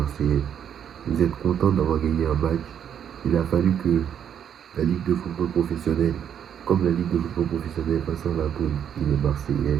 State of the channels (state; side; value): quieter; left; 8.9 dB